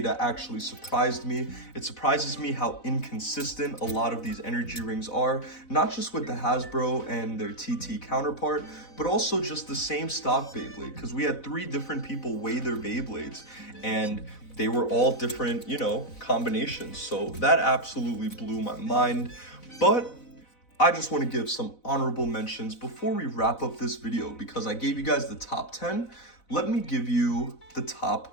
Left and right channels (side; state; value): right; late; 4.0 ms